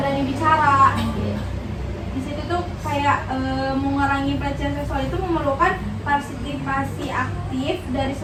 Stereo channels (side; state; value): both; identical; correlation 1.00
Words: bicara. Di situ tuh kayak mengurangi pelecehan seksual itu memerlukan partisipasi aktif dari